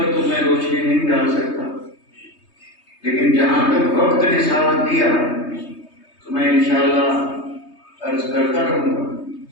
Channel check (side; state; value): right; late; 3.2 ms